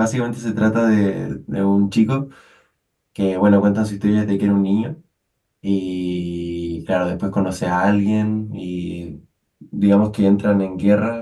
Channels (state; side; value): identical; both; correlation 1.00